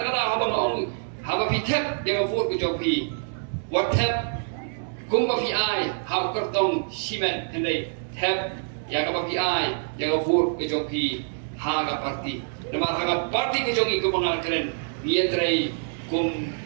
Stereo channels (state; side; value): silent; left; digital silence